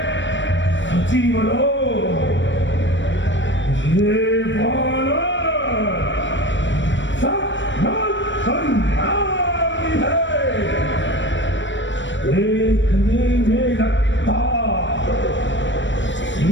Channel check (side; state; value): right; late; 0.54 ms